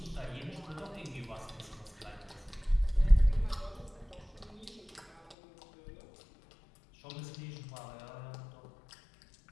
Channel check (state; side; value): drops out; right; at 5.4 s